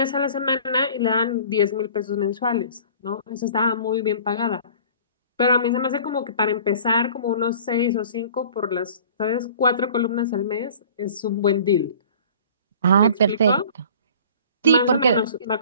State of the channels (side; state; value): both; inverted; correlation -0.47